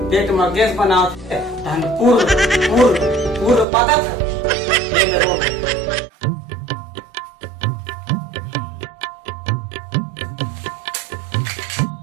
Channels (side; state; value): left; drops out; at 3.7 s